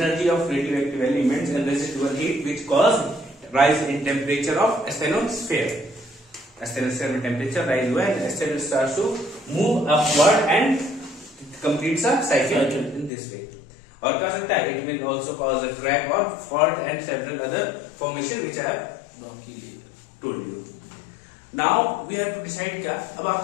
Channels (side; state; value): right; drops out; at 13.1 s